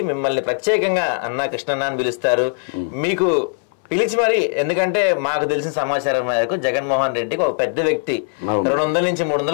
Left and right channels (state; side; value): silent; right; 61 dB below the other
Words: మిమ్మల్ని ప్రత్యేకంగా అన్నా కృష్ణన్న అని పిలుస్తారు. మీకు పిలిచి మరి, ఎందుకంటే మాకు తెలిసిన సమాచారం మేరకు జగన్మోహన్ రెడ్డికి ఒక పెద్ద వ్యక్తి 200 నుంచి